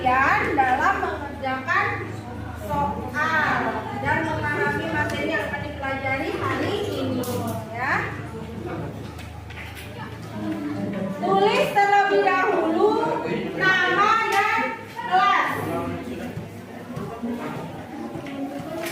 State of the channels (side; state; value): both; identical; correlation 1.00